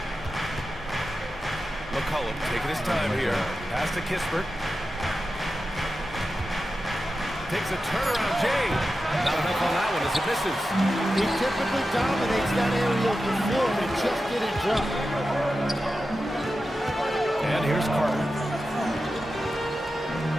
McCollum taking his time here. Pass to Kispert. Takes a turnaround, Jay. Not enough on that one as it misses. He typically dominates that area of the floor, and it just didn't drop. And here's Carter.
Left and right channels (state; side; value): normal; both; correlation 0.92